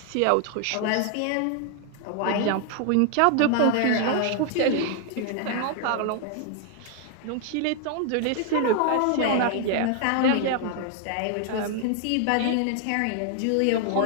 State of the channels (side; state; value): both; different; correlation 0.00